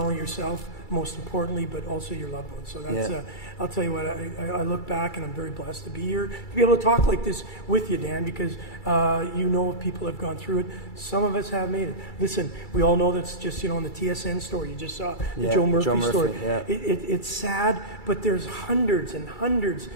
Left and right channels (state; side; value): late; right; 2.3 ms